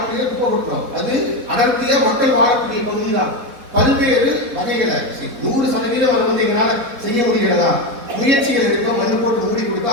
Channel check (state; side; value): late; left; 4.1 ms